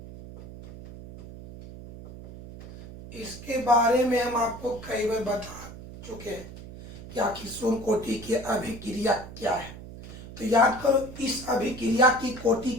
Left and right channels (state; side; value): noise; right; hum, 14 dB below the sound